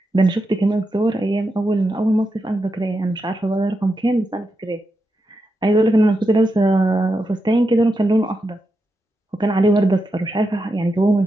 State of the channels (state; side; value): normal; both; correlation 0.86